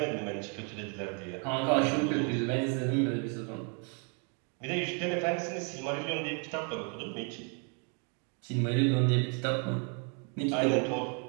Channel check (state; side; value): quieter; left; 38.9 dB